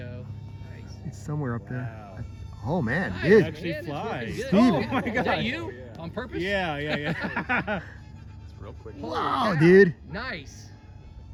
Nice. It's somewhere up there. Wow. Oh man, Nice, dude. man. Actually It's flies. working good. Steven. Oh my Is God. that you? On purpose? Yeah. It's real quick. Holy Wow, cow. dude. Nice.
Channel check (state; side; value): identical; both; correlation 1.00